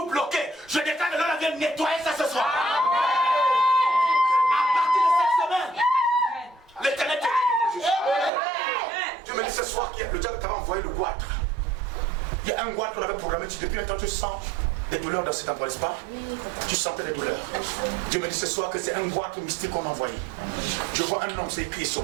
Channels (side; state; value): left; drops out; at 8.3 s